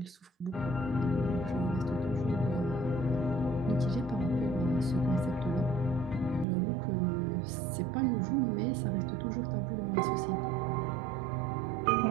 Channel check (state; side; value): drops out; left; at 6.5 s